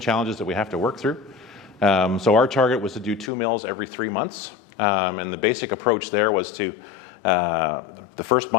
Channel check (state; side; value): drops out; right; at 3.3 s